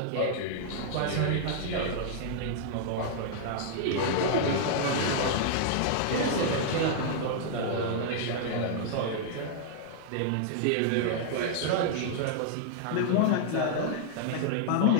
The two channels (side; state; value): both; different; correlation -0.01